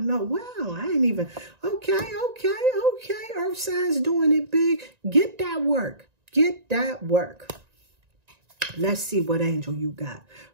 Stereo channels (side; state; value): left; late; 1.9 ms